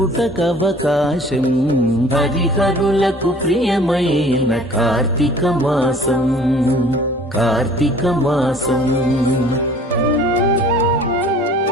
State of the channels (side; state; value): both; normal; correlation 0.50